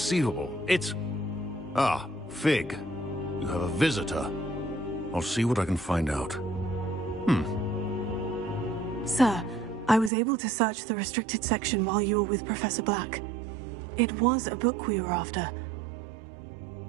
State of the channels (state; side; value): drops out; left; at 10.1 s